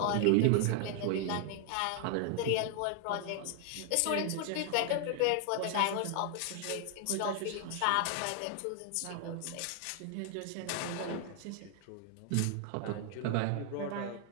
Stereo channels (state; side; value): different; both; correlation 0.00